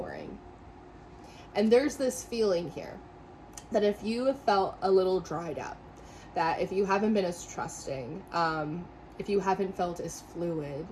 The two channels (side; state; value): both; identical; correlation 1.00